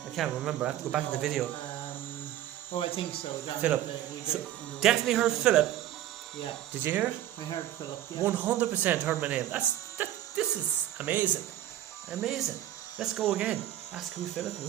can't remember. I have to go back in the video. I think so. Philip. So, definitely heard Philip. Yeah. Did you hear it? I heard Philip. Yeah. 100% heard my name. This is amazing. Amazing. Let's go again. Ask who's Philip and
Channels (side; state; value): left; quieter; 12.7 dB